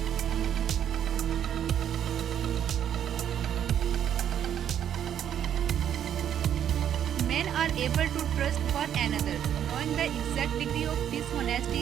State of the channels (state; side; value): quieter; left; 9.7 dB